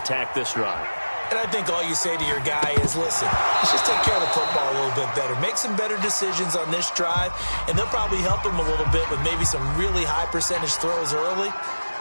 this drive. And I think all you say to your guy is, listen, let's just take care of the football a little bit better. Make some better decisions on this drive, and they'll probably help him a little bit with maybe some really high percentage throws early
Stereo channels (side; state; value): both; inverted; correlation -1.00